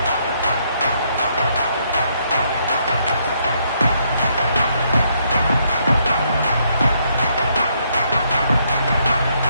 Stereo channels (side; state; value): both; inverted; correlation -0.73